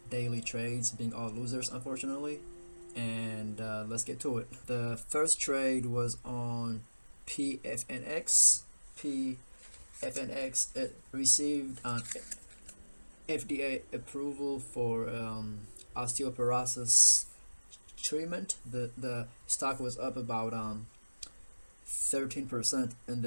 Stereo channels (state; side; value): inverted; both; correlation -1.00